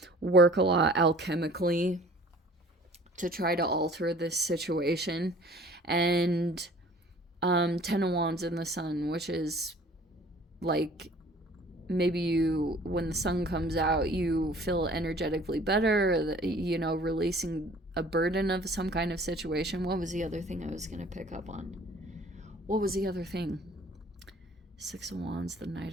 work a lot alchemically to try to alter this situation. And 10 of Wands in the Sun, which is, like, maybe you, when the sun comes out, you feel energetically better, you know, releasing a burden of some kind of situation. What was the other thing I was going to pick up on? What was the other thing? 6 of Wands, the Knight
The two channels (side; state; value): both; normal; correlation 0.50